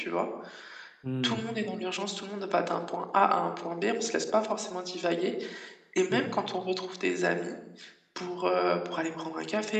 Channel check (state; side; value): identical; both; correlation 1.00